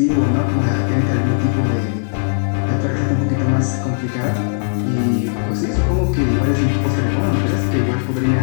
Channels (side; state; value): right; silent; 65 dB below the other